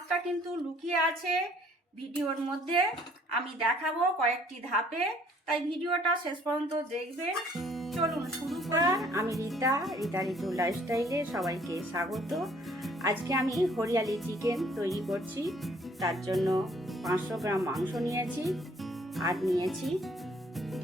কিন্তু লুকিয়ে আছে ভিডিওর মধ্যে। আমি দেখাবো কয়েকটি ধাপে, তাই ভিডিওটা শেষ পর্যন্ত দেখবেন। চলুন শুরু করা। আমি রীতা ঋতু লাইফস্টাইলে সবাইকে স্বাগত। আজকে আমি হরিয়ালি চিকেন তৈরি করছি। তার জন্য 500 গ্রাম মাংস নিয়েছি, আর নিয়েছি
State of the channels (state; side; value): normal; both; correlation 0.60